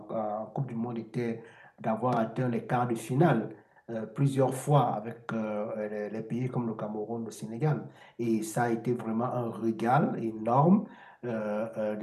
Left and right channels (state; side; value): identical; both; correlation 1.00